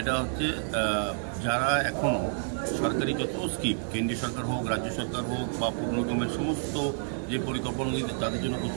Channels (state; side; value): silent; left; 55 dB below the other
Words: এটা হচ্ছে যারা এখনও সরকারি যত স্কিম, কেন্দ্রীয় সরকার হোক, রাজ্য সরকার হোক বা পৌর নিগমের সমস্ত যে পরিকল্পনাগুলি তাদের জন্য